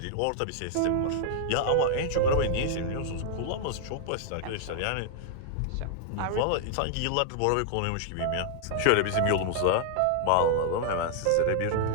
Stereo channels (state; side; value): different; both; correlation 0.00